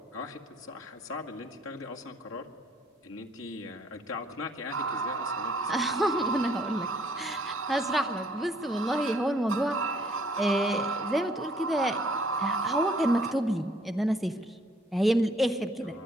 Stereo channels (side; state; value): both; normal; correlation 0.63